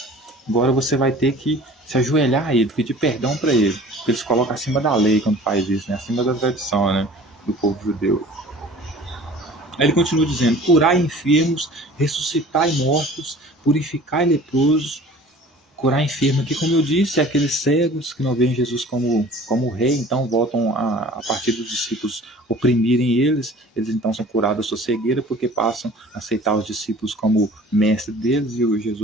Agora você vai ter que se ajoelhar a ele, pedir perdão para ele, porque ele se coloca acima da lei quando faz isso, né? Acima da tradição, né? Do povo judeu. Aí ele continua dizendo: curai enfermos, ressuscitai mortos, purificai leprosos. Curar enfermo aqui, como eu disse, é aqueles cegos que não veem Jesus como rei, então voltam a partir dos discípulos oprimirem eles então são curados da sua cegueira, porque passam a aceitar os discípulos como mestre deles e o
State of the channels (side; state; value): both; normal; correlation 0.46